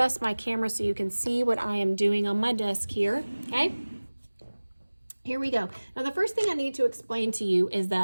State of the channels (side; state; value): both; inverted; correlation -1.00